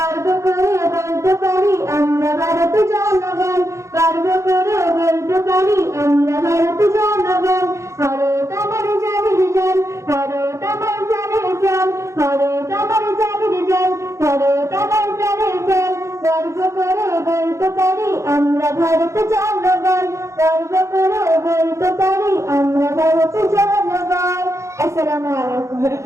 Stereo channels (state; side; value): late; left; 0.14 ms